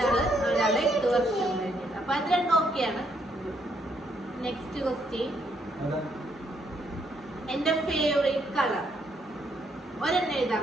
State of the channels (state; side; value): normal; both; correlation 0.73